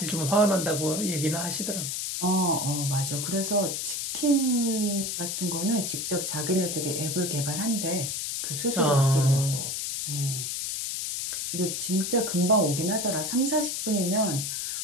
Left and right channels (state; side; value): noise; left; hiss, 3 dB below the sound